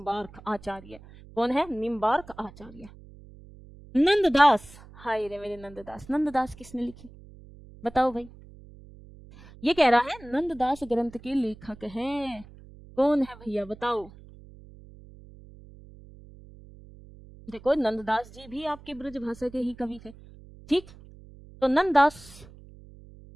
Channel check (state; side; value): noise; right; hum, 20 dB below the sound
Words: आचार्य। कौन है? निम्बार्क आचार्य। नंददास, हाय रे मेरे नंददास, नंददास किसने लिखी? बताओ भाई। ये कह रहा है नंददास ग्रंथ के लेखक हैं। कौन है भैया बताओ? देखो नंददास जी भी आपके ब्रज भाषा के ही कवि थे, ठीक? तो नंददास